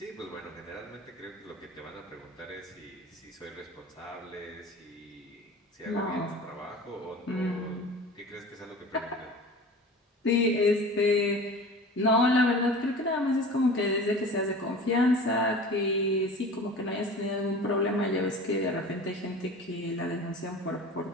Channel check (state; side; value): normal; both; correlation 0.38